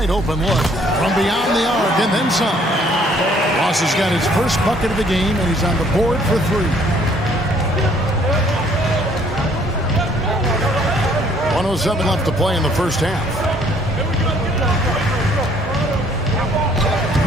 open look from beyond the arc and then some. Ross has got his first bucket of the game, and he's on the board for 3. 1:07 left to play in the first half.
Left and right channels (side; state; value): both; normal; correlation 0.61